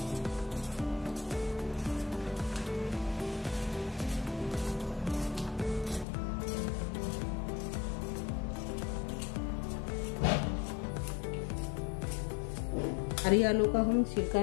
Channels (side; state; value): right; drops out; at 6.1 s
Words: हरी आलू का हम छिलका